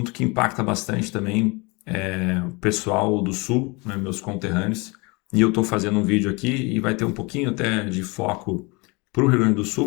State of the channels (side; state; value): right; quieter; 27.5 dB